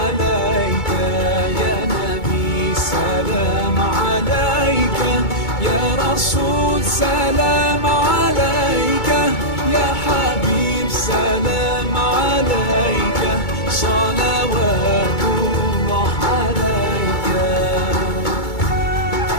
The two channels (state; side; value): late; right; 2.2 ms